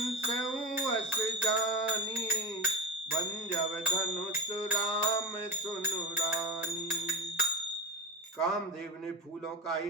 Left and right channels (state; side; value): normal; both; correlation 0.20